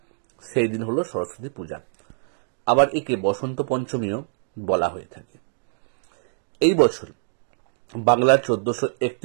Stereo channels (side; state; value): left; silent; digital silence